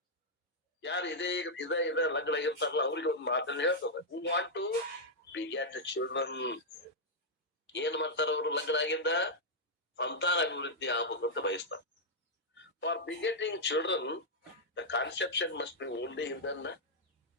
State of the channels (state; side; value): normal; both; correlation -0.06